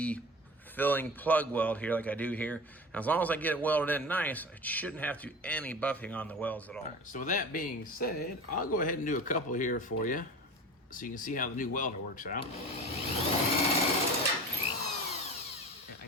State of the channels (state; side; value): normal; both; correlation 0.34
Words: filling plug weld here like I do here. And as long as I get it welded in nice, I shouldn't have to do any buffing on the welds at all. So with that being said, I'll go ahead and do a couple here for you so you can see how the new welder works out. I